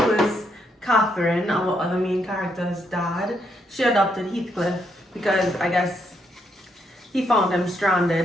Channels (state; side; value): normal; both; correlation 0.76